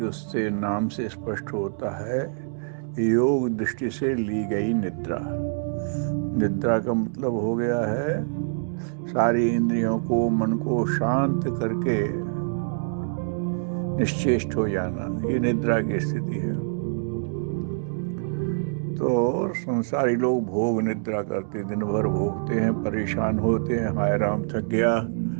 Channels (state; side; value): silent; left; digital silence